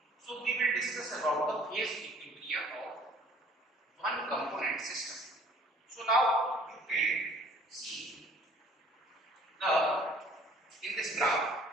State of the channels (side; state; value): both; normal; correlation 0.54